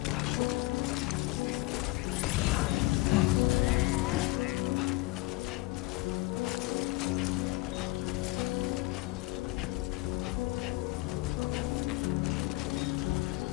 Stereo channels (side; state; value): right; quieter; 20.8 dB